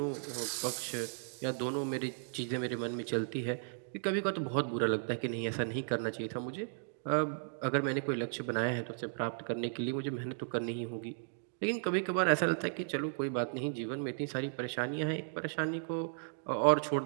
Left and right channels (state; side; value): silent; left; digital silence